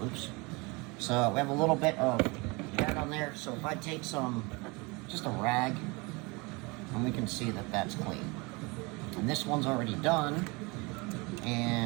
Oops. So we have a little bit of dirt on there. So if I take just a rag, and we can see that that's clean. And this one's already done.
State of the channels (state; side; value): quieter; left; 27.0 dB